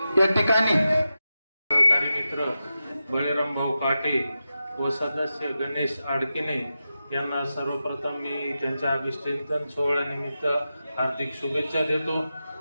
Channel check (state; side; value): inverted; both; correlation -0.91